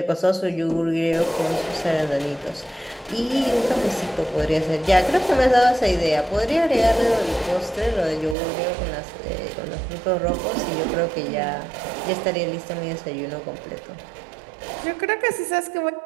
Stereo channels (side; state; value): left; drops out; at 8.3 s